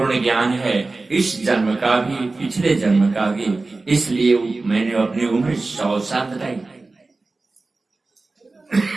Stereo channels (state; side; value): quieter; left; 3.5 dB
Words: ज्ञान है, इस जन्म का भी पिछले जन्म का भी, इसलिए मैंने अपनी उम्र 100 साल बताई।